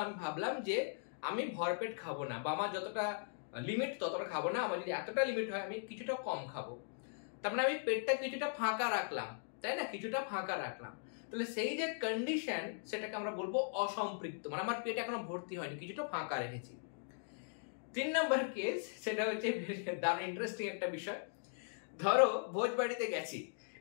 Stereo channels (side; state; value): right; silent; digital silence